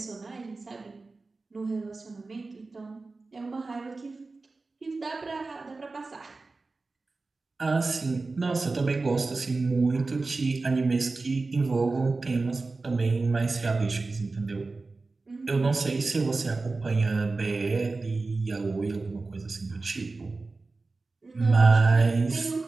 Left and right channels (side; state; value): left; quieter; 3.7 dB